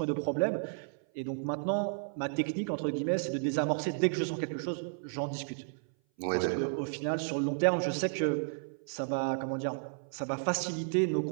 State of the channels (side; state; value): left; silent; 56 dB below the other